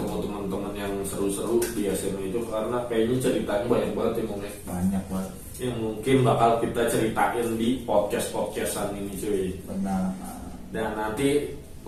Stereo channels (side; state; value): both; identical; correlation 1.00